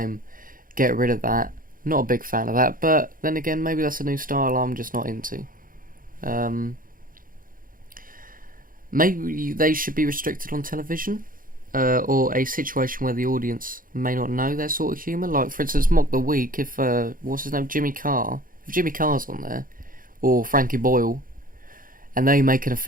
get rid of that. Not a big fan of that, but then again, maybe that's a new style I'm just not into. Maybe they should be restricted on television, or a situation where the audience may not know their sort of humour. Like, for instance, Mock the Week, if, what's his name, Jimmy Carr. If Jimmy Carr's on there, or Frankie Boyle, and they make an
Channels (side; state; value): left; late; 0.40 ms